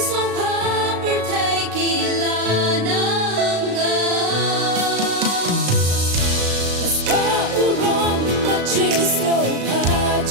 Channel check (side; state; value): left; late; 35 ms